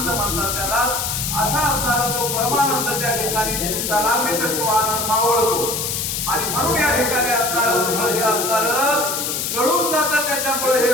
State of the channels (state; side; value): noise; left; hiss, 2 dB below the sound